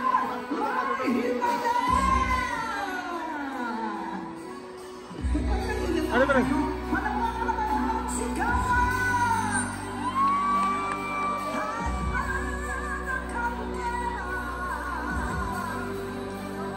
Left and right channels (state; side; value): identical; both; correlation 1.00